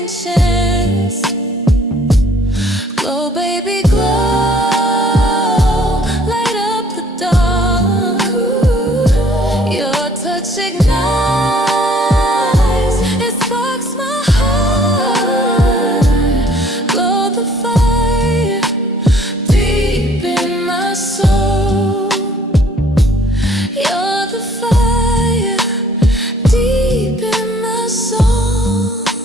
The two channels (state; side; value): normal; both; correlation 0.59